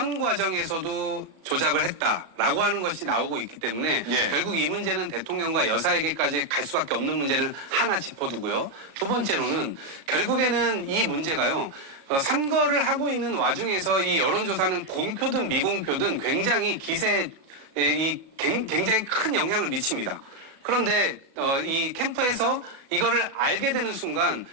과정에서도 조작을 했다라고 하는 것이 나오고 있기 때문에 예. 결국 이 문제는 대통령과 여사에게까지 갈 수밖에 없는 문제를 하나 짚어두고요. 두 번째로는 결국에는 이 문제가요. 선거를 하고 있는 와중에서 이 여론조사는 공표든 미공표든 굉장히 기세에 굉장히 큰 영향을 미칩니다. 그런데 이 캠프에서 이거를 알게 되는 순간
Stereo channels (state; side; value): late; left; 36 ms